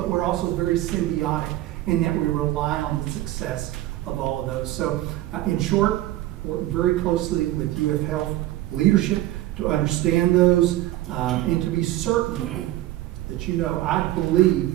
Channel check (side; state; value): left; quieter; 15.5 dB